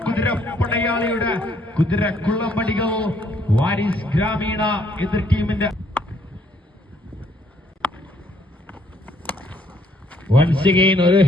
കുതിരപ്പടയാളിയുടെ കുതിരക്കുള്ളമ്പടികൾ. വാരിസ് ഗ്രാമീണ എതിർ ടീമിന്റെ വൺസ് അഗൈൻ ഒരു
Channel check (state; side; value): normal; both; correlation 0.67